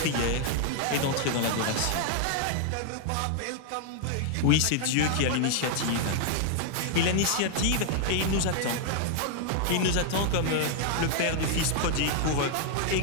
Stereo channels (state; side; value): different; both; correlation 0.00